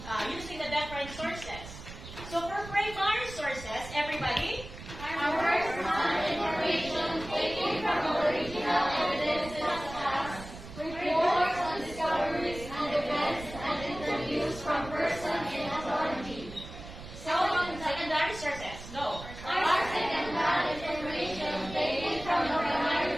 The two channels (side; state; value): right; noise; rumble, 13 dB below the sound